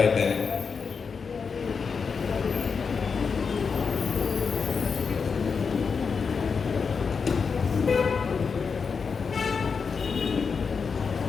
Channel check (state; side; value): quieter; right; 5.5 dB